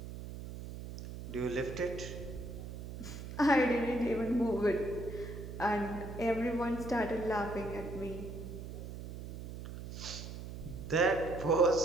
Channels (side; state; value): right; noise; hum, 9 dB below the sound